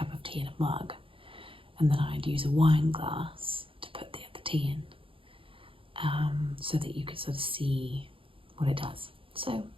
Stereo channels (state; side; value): late; left; 0.26 ms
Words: of tea in a mug, and then I'd use a wine glass to put the other tea in, so that you could sort of see what it does. So